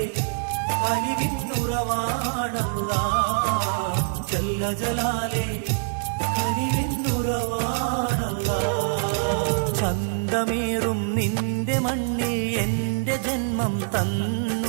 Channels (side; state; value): left; silent; 61 dB below the other